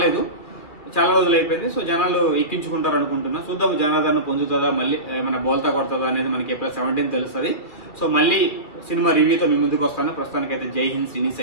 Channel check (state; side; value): late; right; 2.2 ms